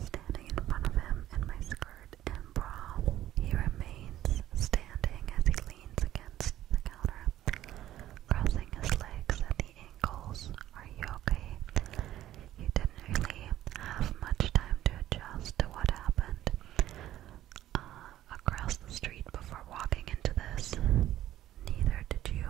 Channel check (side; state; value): left; quieter; 13.3 dB